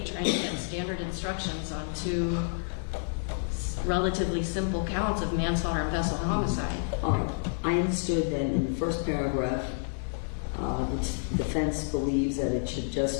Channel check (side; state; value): right; silent; digital silence